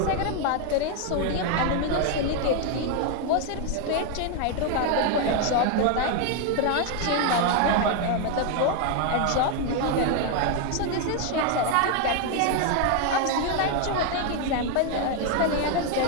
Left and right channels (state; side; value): different; both; correlation 0.01